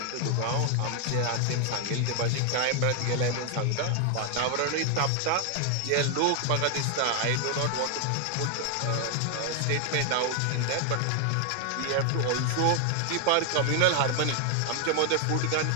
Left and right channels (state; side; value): different; both; correlation 0.00